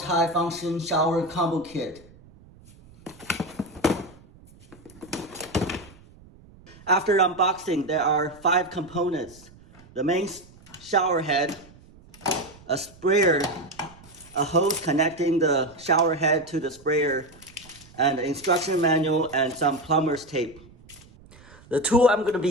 Shower Combo Kit. After unboxing, there are 5 components. The main shower head, a sprayer, a hose connecting the shower head to the sprayer, and an instruction manual and some plumber's tape. The tool I'm going to be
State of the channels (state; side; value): noise; right; rumble, 24 dB below the sound